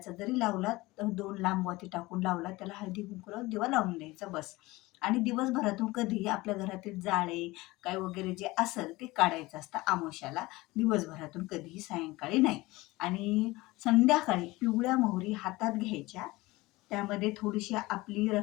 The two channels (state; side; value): quieter; right; 20.6 dB